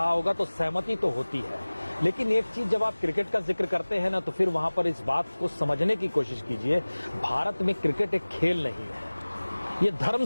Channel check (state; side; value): inverted; both; correlation -1.00